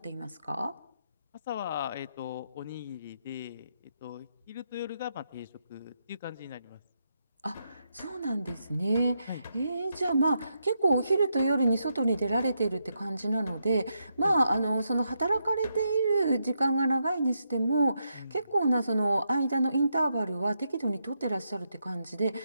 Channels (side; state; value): both; inverted; correlation -0.81